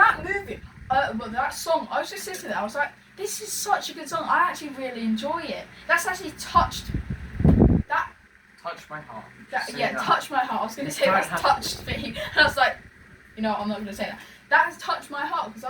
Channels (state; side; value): identical; both; correlation 1.00